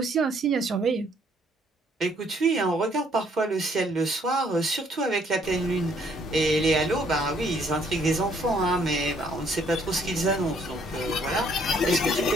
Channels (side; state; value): both; normal; correlation 0.65